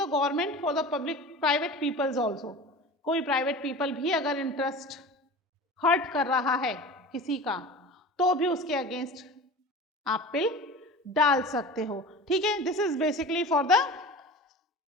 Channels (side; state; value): both; normal; correlation 0.35